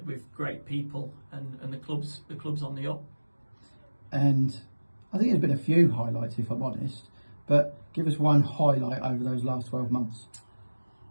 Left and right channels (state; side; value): inverted; both; correlation -1.00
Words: with great people, and the club's on the up. And I think there's been a few highlights, if I'm honest, but give us one highlight over those last 12 months.